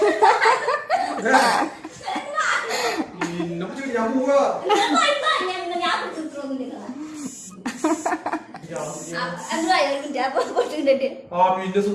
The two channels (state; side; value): identical; both; correlation 1.00